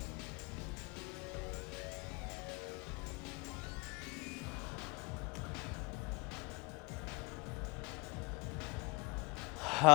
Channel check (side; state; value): right; quieter; 27.0 dB